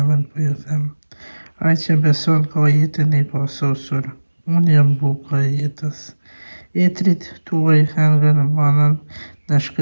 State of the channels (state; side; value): inverted; both; correlation -1.00